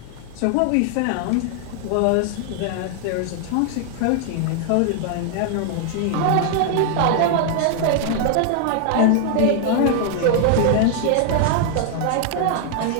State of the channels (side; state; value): both; different; correlation 0.00